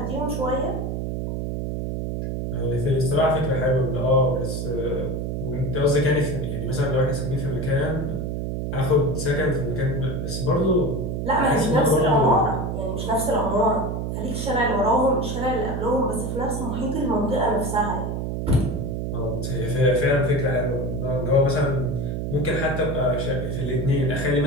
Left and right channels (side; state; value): right; noise; hum, 3 dB below the sound